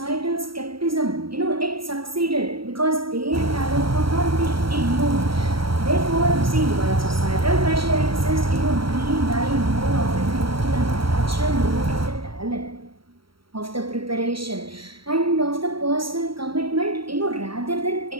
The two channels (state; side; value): late; left; 0.74 ms